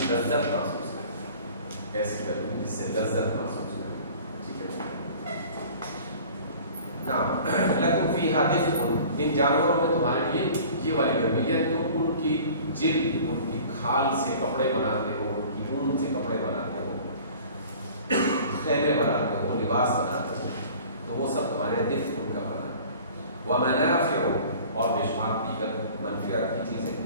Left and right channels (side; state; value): both; inverted; correlation -0.46